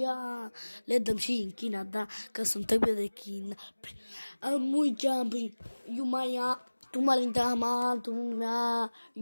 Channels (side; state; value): both; inverted; correlation -1.00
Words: le dăm și în China, da, că suntem de China. Mui jumping, you maya, tu malinda ma, tu mea,